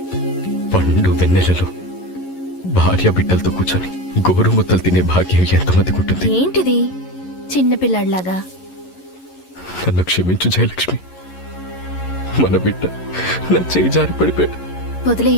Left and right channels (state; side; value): late; right; 11 ms